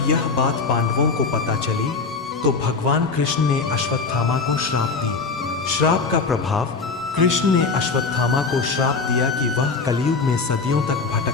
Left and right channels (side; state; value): right; quieter; 4.4 dB